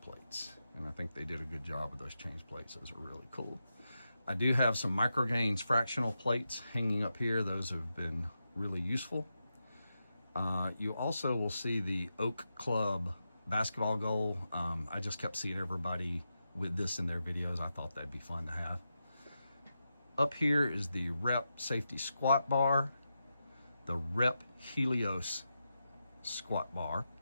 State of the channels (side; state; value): both; inverted; correlation -0.88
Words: plates. And I think they did a good job with those change plates. Those are really cool. I do have some Microgains fractional plates hanging up here. Those have been really useful. You also will see the Oak Club basketball goal. I just kept seeing everybody with this in their videos. I thought that'd be fun to have. Up here is the Rep Safety Squat Bar, the Rep Helios Squat Bar,